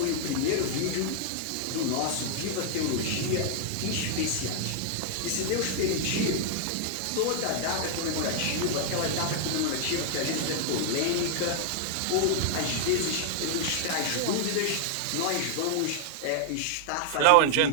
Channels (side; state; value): both; different; correlation 0.00